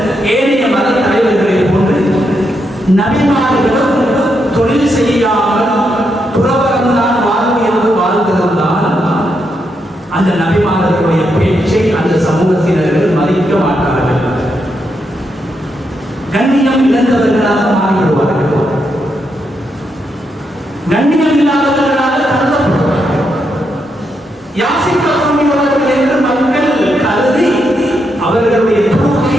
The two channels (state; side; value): normal; both; correlation 0.81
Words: ஏனைய மத தலைவர்களை போன்று நபிமார்களும் தொழில் செய்யாமல் துறவரம்தான் வாழ்வு என்று வாழ்ந்திருந்தால் அந்த நபிமார்களுடைய பேச்சை அந்த சமூகத்தினர்கள் மதிக்க மாட்டார்கள், கண்ணியம் இழந்தவர்களாக மாறிவிடுவார்கள், கண்ணியம் இல்லாதவர்களாக கருதப்படுவார்கள், யாசிக்கக்கூடியவர்கள் என்று மக்கள் கருதி அவர்களுடைய துருவத்தை,